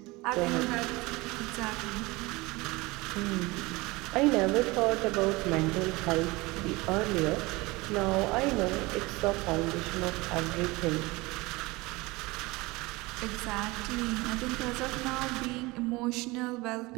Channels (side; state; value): left; quieter; 22.7 dB